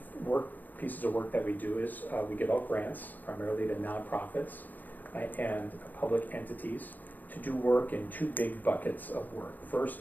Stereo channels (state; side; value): late; right; 0.084 ms